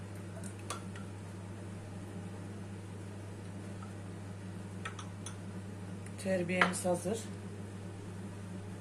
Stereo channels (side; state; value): both; identical; correlation 1.00